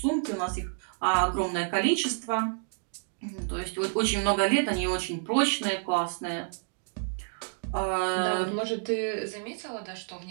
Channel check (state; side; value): silent; left; digital silence